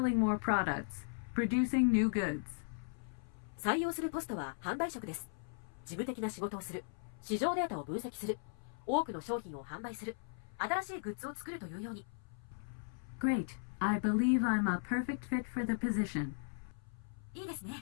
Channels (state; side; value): silent; right; 53 dB below the other